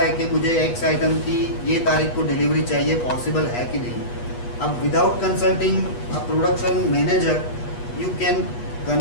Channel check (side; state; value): right; late; 8.3 ms